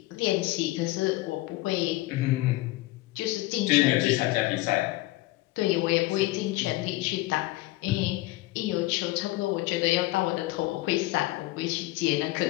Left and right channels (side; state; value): right; quieter; 19.1 dB